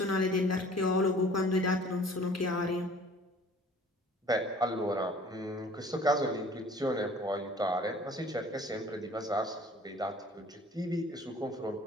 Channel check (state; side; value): normal; both; correlation 0.51